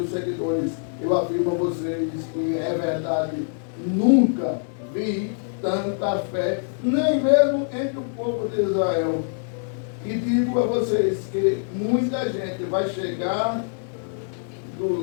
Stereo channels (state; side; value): silent; right; digital silence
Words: seguidores: eu afirmo a vocês que é verdade, nunca vi tanta fé, nem mesmo entre o povo de Israel. E digo a vocês que muita gente vai chegar